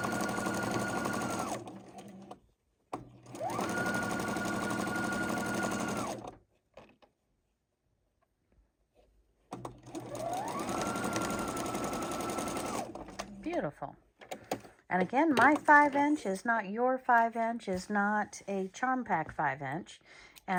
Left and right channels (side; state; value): both; identical; correlation 1.00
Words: Beautiful. And again, my 5-inch is not your 5-inch, is not a Charm Pack 5-inch.